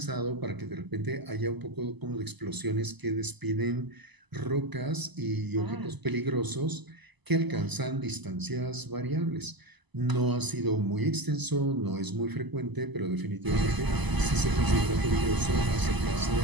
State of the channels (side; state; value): left; late; 1.0 ms